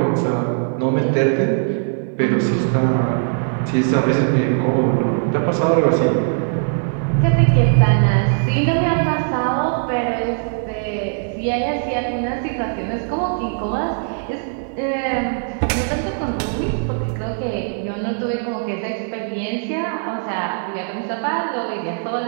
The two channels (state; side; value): silent; left; digital silence